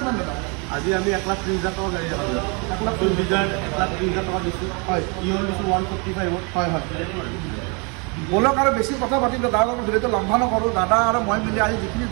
দাদা আজি আমি 1,30,000 টকা গাড়ী দেখালোঁ 1,30,000 টকা দিছোঁ হয় ইয়ন দিছোঁ 145 হয় হয় বলক আৰু বেছি কথা পাতিম দাদা লগত ভিডিঅ'টো লম্বা নকৰোঁ দাদা আৰু মই মিলি আজি যিখিনি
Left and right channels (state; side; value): quieter; left; 33.0 dB